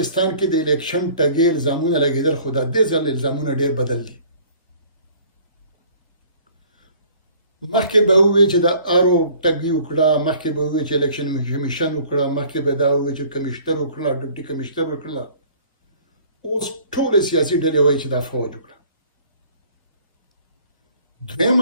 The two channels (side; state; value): both; inverted; correlation -0.53